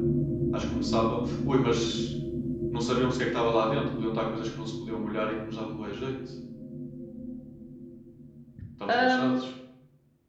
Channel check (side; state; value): both; identical; correlation 1.00